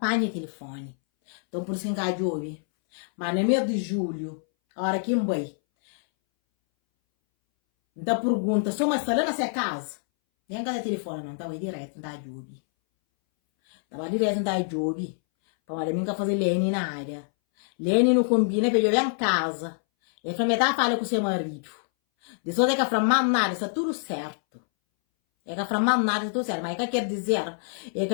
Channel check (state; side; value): silent; right; 61 dB below the other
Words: de telefone. Então por isso que eu ouvi. Mas no mês de julho. A hora que eu vou. Então pergunta, só uma sala nessa casa? Nem cada telefone não, estava direto, não dá job. Estava direto, não dá job. Para mim, que fazer Lene na área. Lene não combina, porque eu venho em casa. Ele falou, metade fala com o seu marido. Depois é que eu falo, nada, está tudo certo. É que eu falo, nada, está tudo certo. Mas o que quer dizer? É que